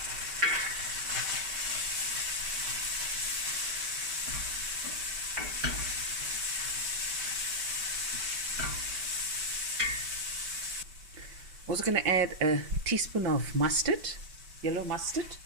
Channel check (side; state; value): left; late; 5.2 ms